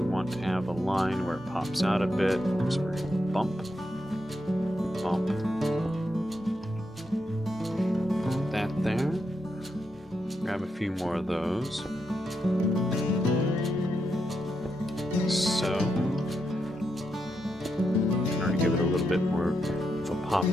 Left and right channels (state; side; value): normal; both; correlation 0.83